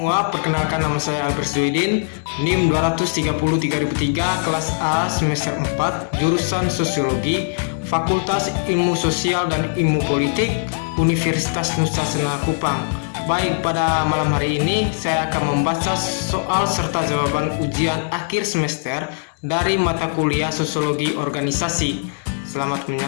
Semua, perkenalkan nama saya Albert Zuidin, NIM 230-3003, kelas A, semester 4, jurusan Sosiologi, Fakultas Ilmu Sosial dan Ilmu Politik, Universitas Nusa Tenggara Kupang. Baik, pada malam hari ini saya akan membaca soal serta jawaban ujian akhir semester dari mata kuliah Sosiologi Organisasi. Selamat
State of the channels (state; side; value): silent; right; digital silence